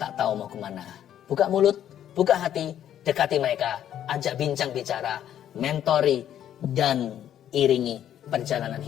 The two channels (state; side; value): quieter; right; 10.6 dB